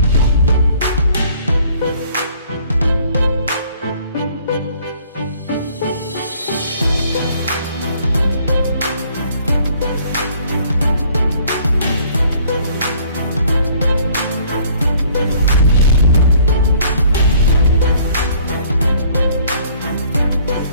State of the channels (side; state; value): both; inverted; correlation -0.58